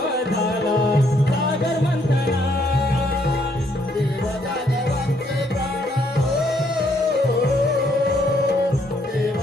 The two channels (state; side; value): normal; both; correlation 0.70